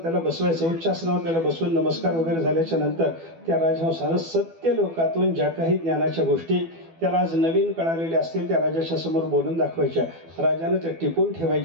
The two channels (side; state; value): left; late; 12 ms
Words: त्याला बसवायचं. उच्च आसनावर त्याला बसवून नमस्कार वगैरे झाल्याच्या नंतर त्या राजहंसानं सत्य लोकातून ज्या काही ज्ञानाच्या गोष्टी त्याला आज नवीन कळालेल्या असतील त्या राजाच्या समोर बोलून दाखवायच्या. राजानं त्या टिपून